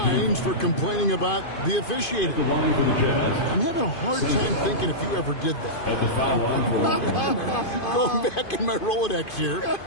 for complaining about the officiating. I'm having a hard time thinking if you ever did that. Going back in my Rolodex here,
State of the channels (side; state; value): right; late; 2.5 ms